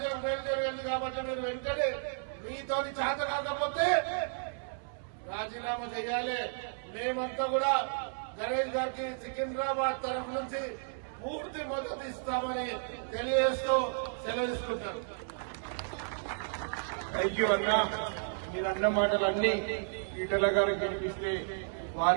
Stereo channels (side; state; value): left; silent; 56 dB below the other